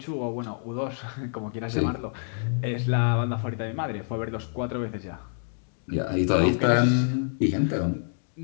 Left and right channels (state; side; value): silent; right; digital silence